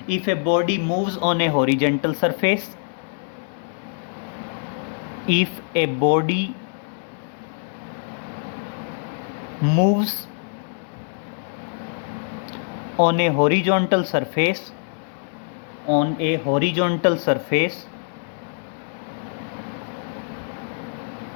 If a body moves on a horizontal surface, if a body moves on a horizontal surface, on a horizontal surface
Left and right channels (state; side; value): silent; right; 62 dB below the other